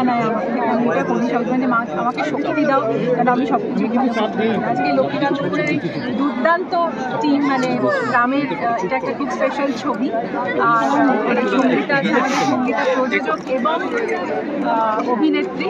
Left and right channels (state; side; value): identical; both; correlation 1.00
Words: নেয় আমাকে। আমি এটা করি সবসময়, মা আমাকে শক্তি দাও যেন আমি সব কিছু। আজকে লক্ষ্মীকান্তপুরের এই দুর্দান্ত টিম, মানে গ্রামের, এটা একটা খুব স্পেশাল ছবি। আর সঙ্গীতা প্রযোজক এবং অভিনেত্রী